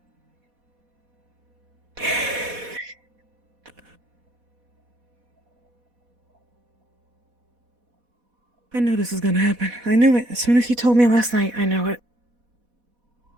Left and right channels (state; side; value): late; left; 4.1 ms